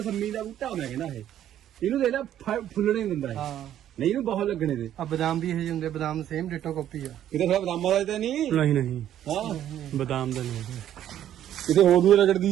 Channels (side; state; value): left; quieter; 11.3 dB